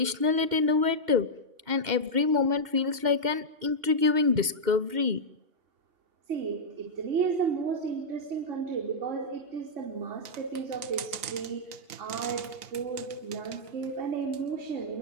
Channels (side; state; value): left; late; 2.1 ms